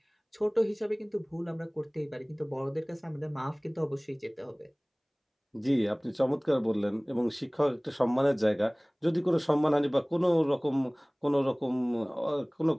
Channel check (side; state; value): both; identical; correlation 1.00